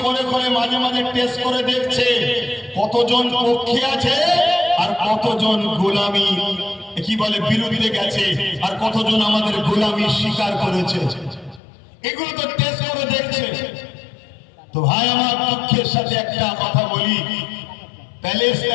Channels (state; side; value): drops out; right; at 11.6 s